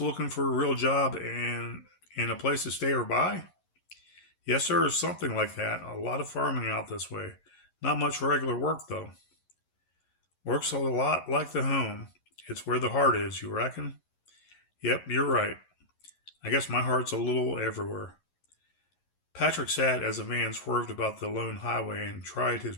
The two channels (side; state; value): right; late; 11 ms